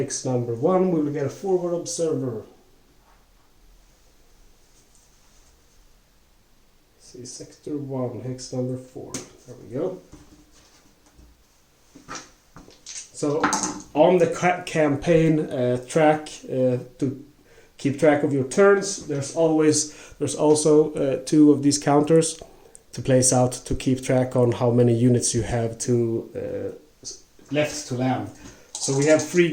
number 1, we will get a forward observer. See, sector 1, hex number 4. There we go. So on the campaign track, to keep track of your turns, there's also 2 of these counters to place out to keep track on how many units you have to left to land. So we have 3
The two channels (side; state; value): both; identical; correlation 1.00